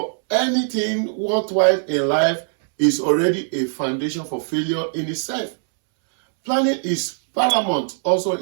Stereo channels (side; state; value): left; silent; 65 dB below the other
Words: anything worthwhile in life is already a foundation for failure in itself. Planning is paramount also